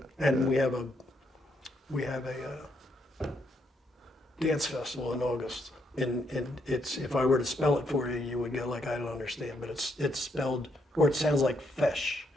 And we have a dance festival in August, and it's, if I were to spell it for you, you would go like, I don't understand, but it's spelled, or it sounds like fish,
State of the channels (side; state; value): both; normal; correlation 0.76